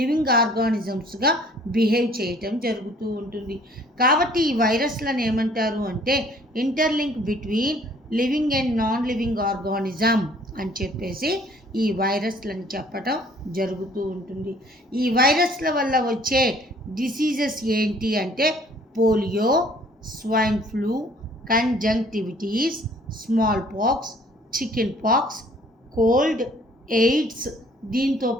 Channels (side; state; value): both; normal; correlation 0.57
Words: ఆర్గానిజమ్స్గా బిహేవ్ చేయటం జరుగుతూ ఉంటుంది. కాబట్టి ఈ వైరస్లను ఏమంటారు అంటే interlink between living and non living organism అని చెప్పేసి ఈ వైరస్లను చెప్పటం జరుగుతూ ఉంటుంది. ఈ వైరస్ల వల్ల వచ్చే డిసీజెస్ ఏంటి అంటే polio, swine flu, conjunctivitis, small pox, chicken pox, cold, AIDS. దీంతో